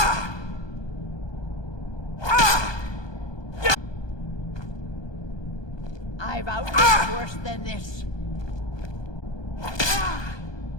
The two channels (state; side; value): late; right; 1.2 ms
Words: I've outlived worse than this.